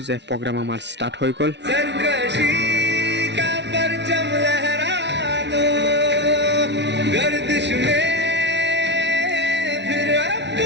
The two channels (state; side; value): late; left; 0.51 ms